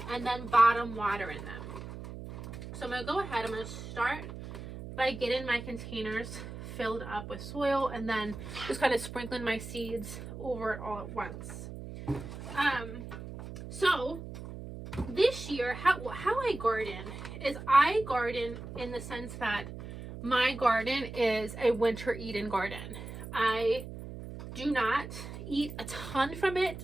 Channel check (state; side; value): noise; right; hum, 10 dB below the sound